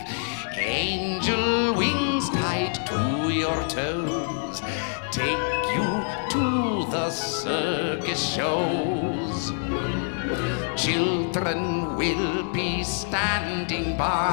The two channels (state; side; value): silent; right; 60 dB below the other